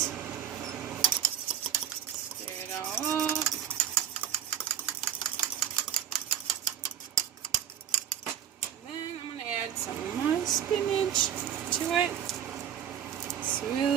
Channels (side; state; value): left; quieter; 9.8 dB